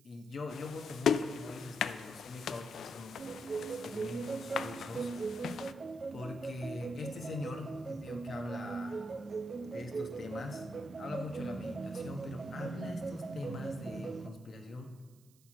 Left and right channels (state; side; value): noise; right; hiss, 28 dB below the sound